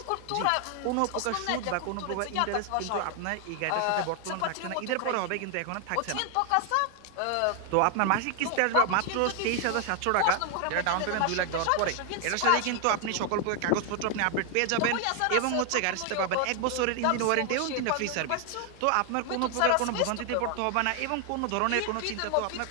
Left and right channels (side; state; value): both; different; correlation 0.00